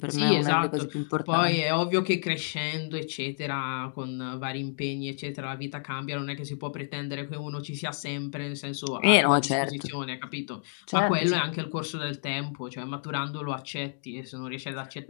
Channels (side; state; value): right; silent; digital silence